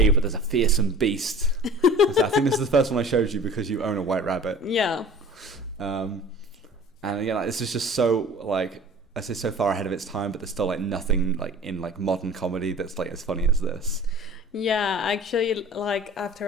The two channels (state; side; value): normal; both; correlation 0.43